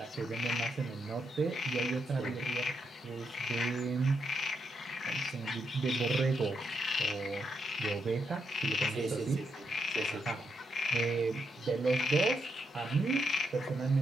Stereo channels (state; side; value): normal; both; correlation 0.81